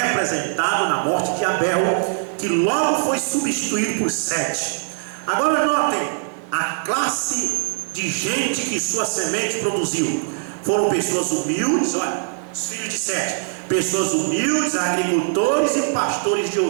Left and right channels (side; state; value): left; silent; digital silence